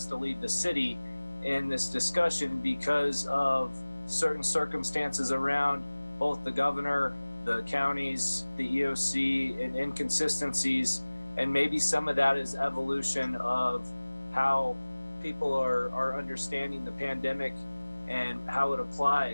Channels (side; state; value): both; inverted; correlation -1.00